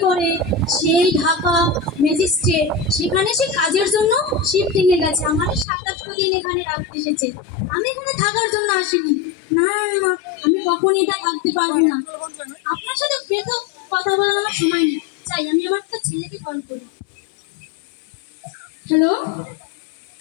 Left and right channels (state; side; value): drops out; right; at 5.7 s